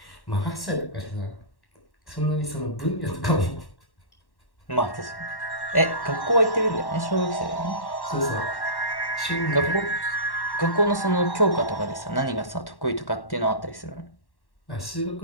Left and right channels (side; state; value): right; late; 1.1 ms